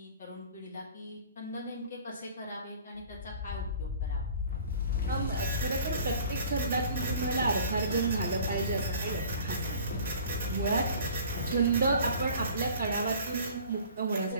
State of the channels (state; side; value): inverted; both; correlation -0.48